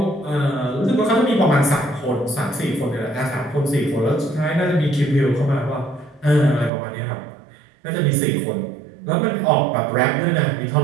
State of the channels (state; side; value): drops out; left; at 6.7 s